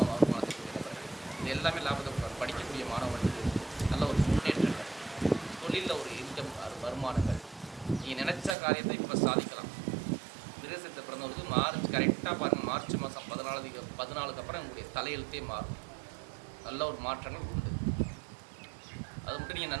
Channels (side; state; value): left; drops out; at 8.6 s